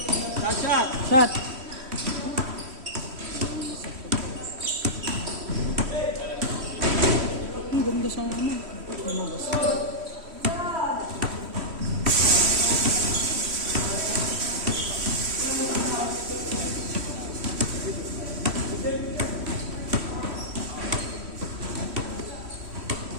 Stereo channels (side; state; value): left; late; 3.1 ms